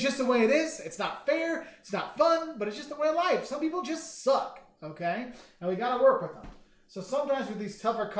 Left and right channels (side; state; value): both; identical; correlation 1.00